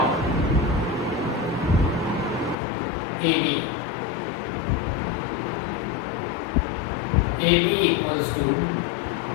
AB. AB equals to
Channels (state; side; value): drops out; right; at 2.6 s